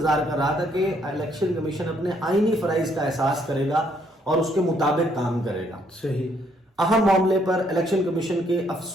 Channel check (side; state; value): both; normal; correlation 0.69